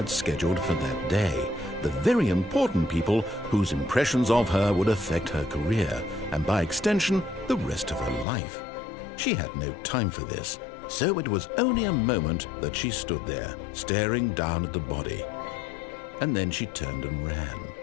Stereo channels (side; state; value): right; drops out; at 8.2 s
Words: scheduled for that day, the very important people whose impressions of her would affect her career, and by extension, the rest of her life. She had no time for this, so it was only a moment that she stood there, staring down at the body. And then she turned and ran.